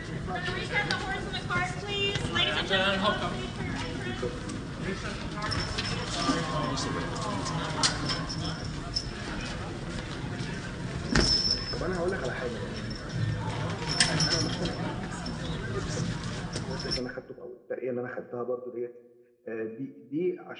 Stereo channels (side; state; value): both; identical; correlation 1.00